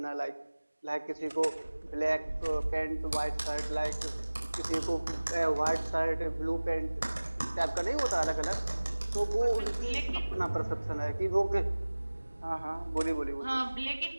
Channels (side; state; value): both; inverted; correlation -1.00